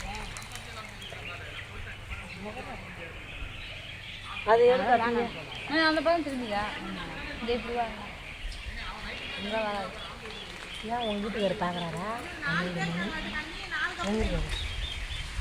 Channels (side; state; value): both; identical; correlation 1.00